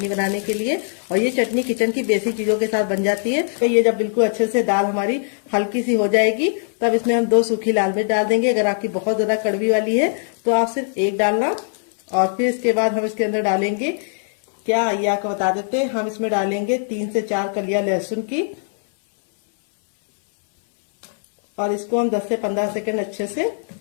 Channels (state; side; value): silent; right; 60 dB below the other